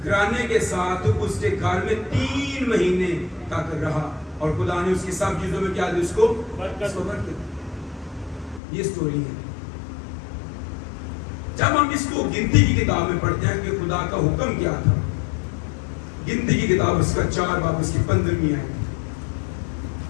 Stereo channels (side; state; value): right; drops out; at 8.6 s